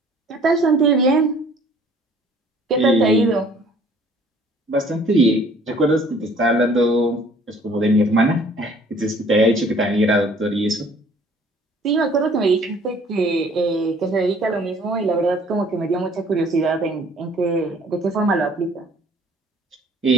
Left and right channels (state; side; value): normal; both; correlation 0.55